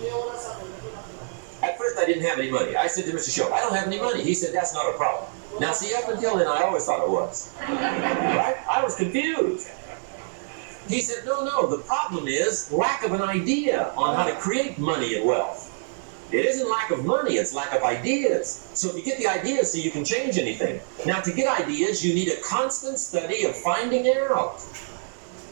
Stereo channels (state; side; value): silent; left; digital silence